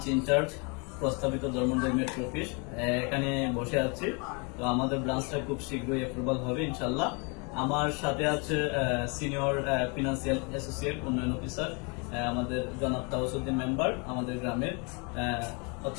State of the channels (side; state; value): right; quieter; 32.9 dB